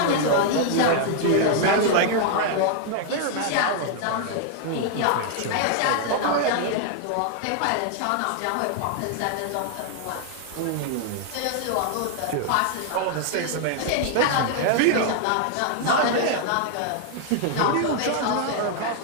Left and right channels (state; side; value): different; both; correlation 0.00